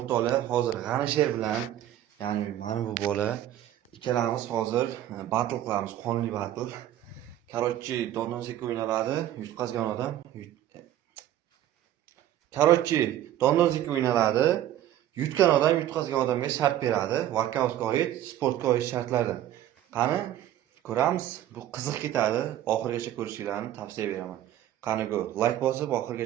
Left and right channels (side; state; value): left; quieter; 12.5 dB